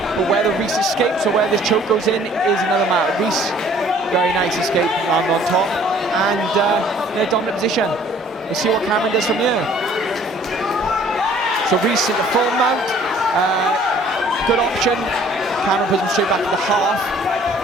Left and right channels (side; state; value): both; normal; correlation 0.56